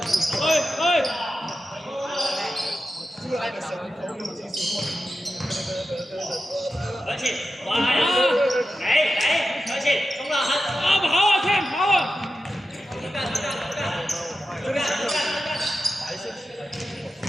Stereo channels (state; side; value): normal; both; correlation 0.92